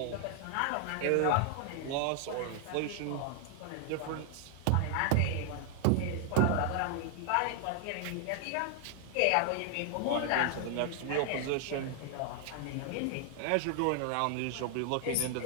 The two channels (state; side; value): different; both; correlation 0.00